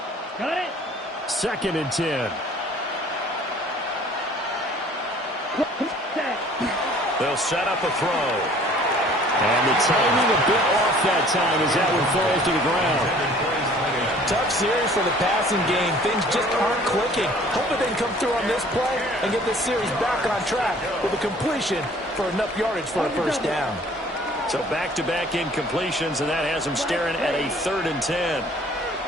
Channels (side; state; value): both; normal; correlation 0.53